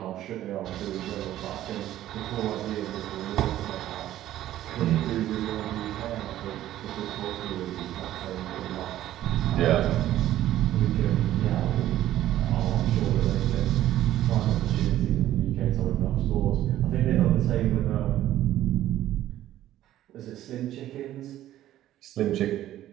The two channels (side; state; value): left; quieter; 13.3 dB